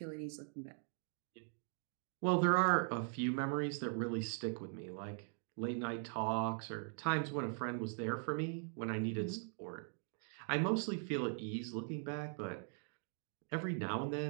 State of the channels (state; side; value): silent; left; 50 dB below the other